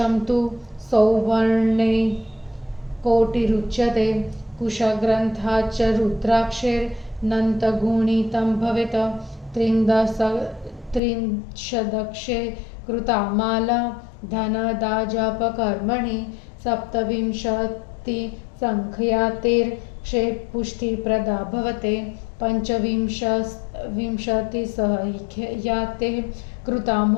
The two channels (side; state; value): right; drops out; at 11.0 s